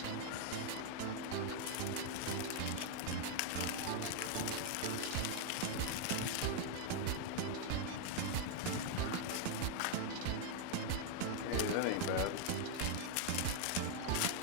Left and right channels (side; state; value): both; different; correlation 0.00